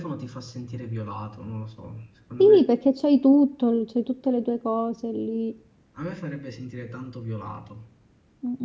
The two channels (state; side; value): identical; both; correlation 1.00